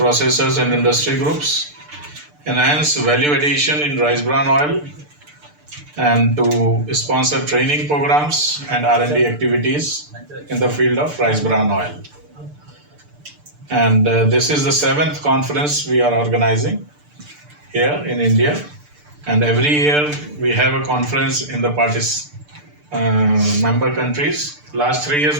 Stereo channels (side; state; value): left; late; 6.8 ms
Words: and industry groups, enhance value addition in rice bran oil, and to sponsor training programs and R&D activities in the field of rice bran oil. And this is the 7th conference we are organizing here in India. And every year we have a conference in the member countries. Last 3 years,